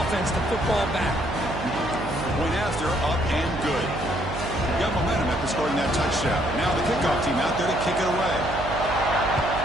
the football back? Point after, up and good. Got momentum after scoring that touchdown. Now the kickoff team out there to kick it away.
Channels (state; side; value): noise; right; hum, 7 dB below the sound